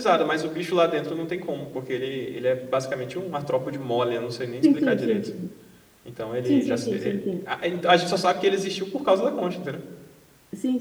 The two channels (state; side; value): identical; both; correlation 1.00